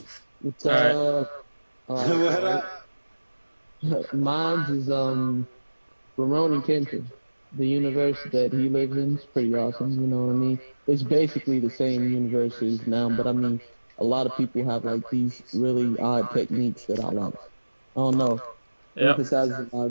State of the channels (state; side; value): inverted; both; correlation -1.00